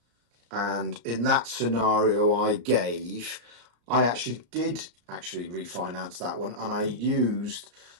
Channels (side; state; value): left; late; 34 ms